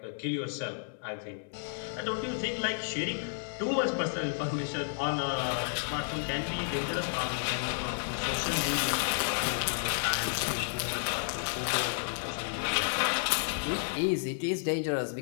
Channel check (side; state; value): right; silent; digital silence